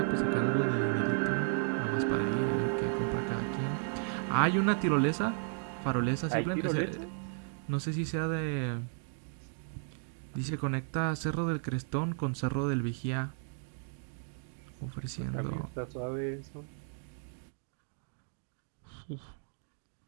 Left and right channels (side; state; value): left; silent; 55 dB below the other